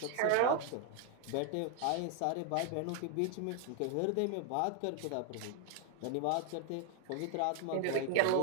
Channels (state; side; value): different; both; correlation 0.00